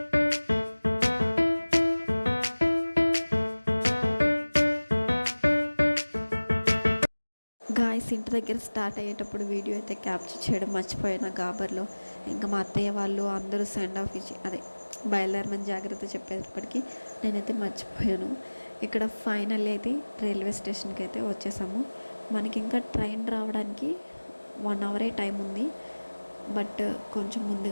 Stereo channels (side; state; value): both; inverted; correlation -1.00